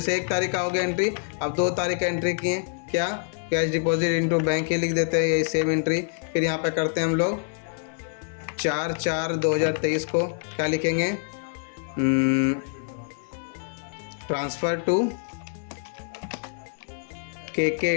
1 तारीख का हो गया एंट्री, अब 2 तारीख का एंट्री किए, क्या? कैश डिपॉजिट इंटू बैंक ही लिख देते हैं, यही सेम एंट्री। फिर यहाँ पे करते हैं हम लोग 4/4/2023 को क्या लिखेंगे? ट्रांसफ़र टू के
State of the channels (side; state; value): right; silent; 57 dB below the other